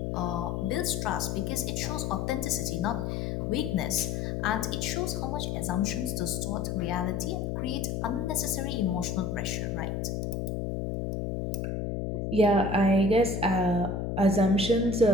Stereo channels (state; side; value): noise; left; hum, 2 dB below the sound